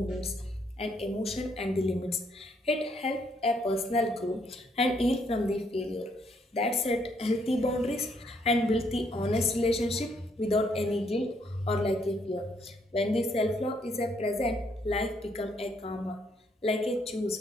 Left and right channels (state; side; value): normal; both; correlation 0.71